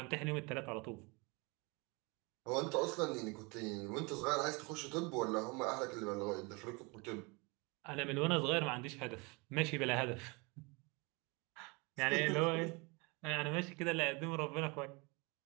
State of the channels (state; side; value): quieter; left; 28.3 dB